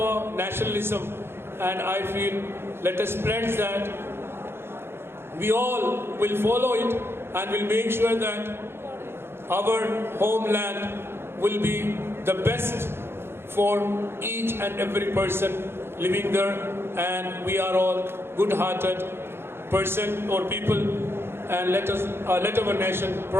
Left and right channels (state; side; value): late; left; 0.11 ms